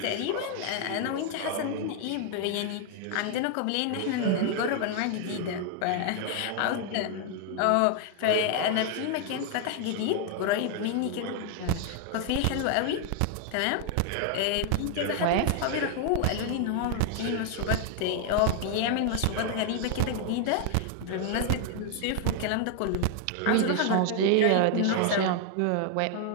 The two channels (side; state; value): both; different; correlation 0.00